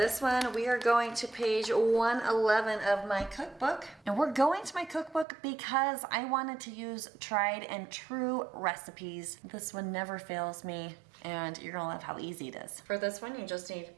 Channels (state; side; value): drops out; left; at 5.2 s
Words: one, we are going to page 111 of my cookbook. And we're going to my cookbook because I wanted to use tried and true recipes. This one never fails me, and you're gonna love how easy it is. For this one, you just need